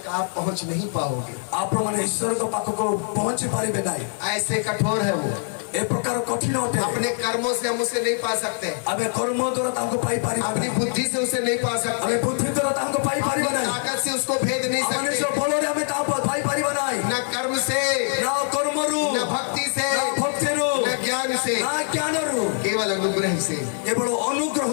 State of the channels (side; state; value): right; silent; 61 dB below the other